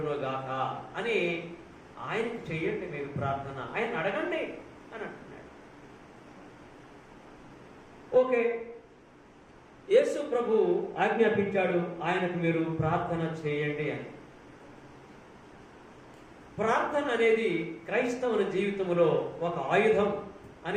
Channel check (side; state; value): both; identical; correlation 1.00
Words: అని ఆయనకు చెయ్యండి మీరు ప్రార్థన, ఆయన అడగండి అని అంటున్నాడు. ఓకే, యేసు ప్రభు ఆజ్ఞాపించాడు ఆయనకు మీరు ప్రార్థన చేయండి అని. ప్రార్థన అనేది క్రైస్తవుని జీవితంలో ఒక ఆయుధం